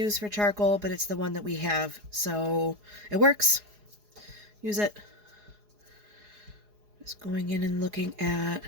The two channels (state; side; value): late; left; 4.8 ms